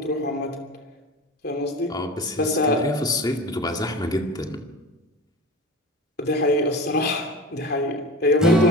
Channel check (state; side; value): normal; both; correlation 0.32